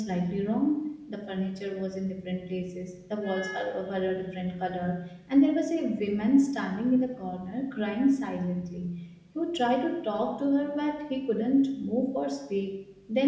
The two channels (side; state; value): both; identical; correlation 1.00